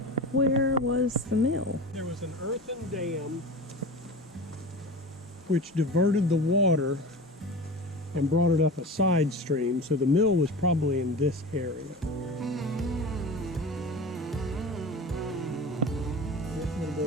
where was the mill? There was an earthen dam which diverted the water and brought it up a side stream, so the mill was probably in this area. This would have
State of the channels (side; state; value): both; normal; correlation 0.32